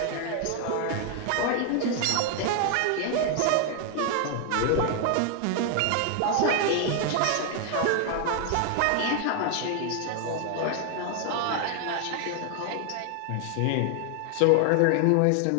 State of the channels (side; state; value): both; different; correlation 0.00